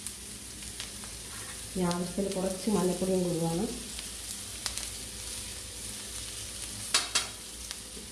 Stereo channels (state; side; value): identical; both; correlation 1.00